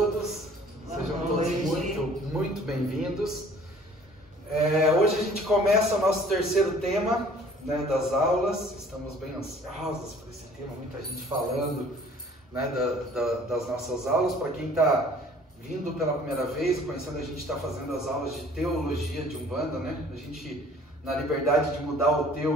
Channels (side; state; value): both; normal; correlation 0.53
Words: Sejam todos muito bem-vindos. Hoje a gente começa o nosso terceiro tema, né, das aulas. Estamos bem ansiosos por esse tema, muita gente falando, né, das nossas aulas. Para quem está vindo pela primeira vez, conhecendo, a gente está fazendo as aulas de teologia de Umbanda, né? A gente, na liberdade de mudar o